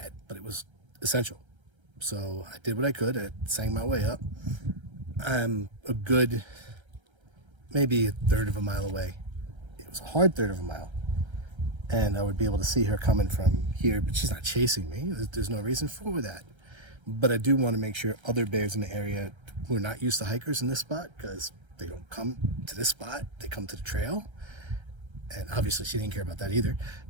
but it was essential. So I did what I could. I sang my way up. I'm a good, maybe a third of a mile away. It was a hard third of a mile. And I would be able to see her coming from here, but she's not chasing me. There's no reason for that. But I do want to make sure other bears in the area who are not used to hikers in this spot, because they don't come to this spot, they come to the trail. And obviously she didn't care about that either.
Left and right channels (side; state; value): left; late; 1.3 ms